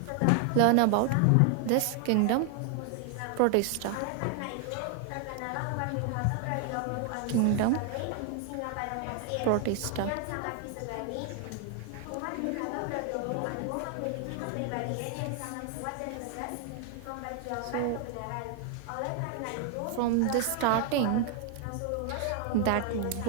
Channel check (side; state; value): both; different; correlation 0.00